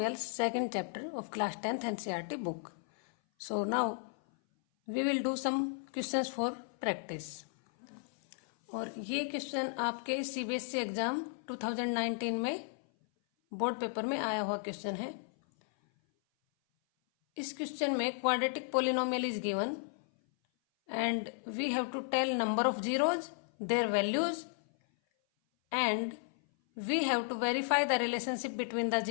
second chapter of class 10th NCERT book. So now we will do some questions for practice. और ये question आपके CBSE exam 2019 में board paper में आया हुआ question है. इस question में quadratic polynomial is given and we have to tell number of zeros, their values, and we have to verify the relationship between the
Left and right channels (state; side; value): silent; right; 55 dB below the other